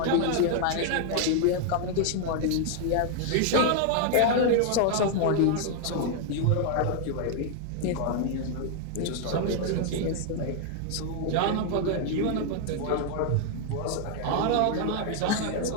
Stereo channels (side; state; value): both; different; correlation 0.00